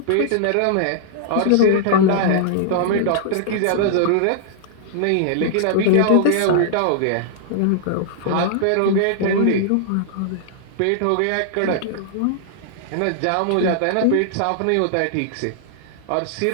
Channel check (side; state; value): both; different; correlation -0.01